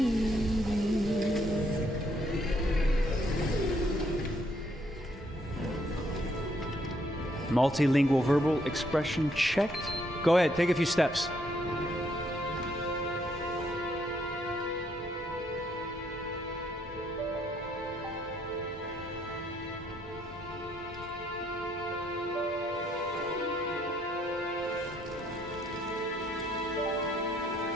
Multilingual verbal expression checked. Go ahead, take a few steps.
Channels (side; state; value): both; normal; correlation 0.71